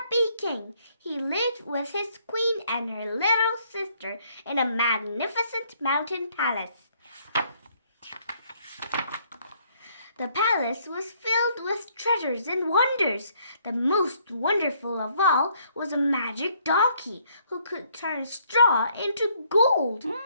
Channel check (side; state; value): both; inverted; correlation -0.67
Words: king. He lived with his queen and her little sister in a magnificent mountain palace. The palace was filled with treasures and wonders. The most wonderful of all was a magic donkey who could turn straw into gold.